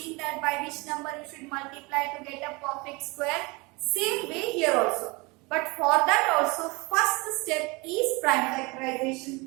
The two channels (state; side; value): quieter; left; 26.2 dB